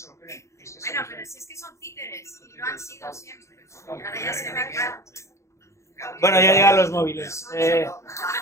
lo creen. Bueno, pero si es que son títeres, y lo han sido siempre. Ahora ya se ve claro. Bueno, ya llegan los móviles. Una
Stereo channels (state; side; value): late; right; 0.14 ms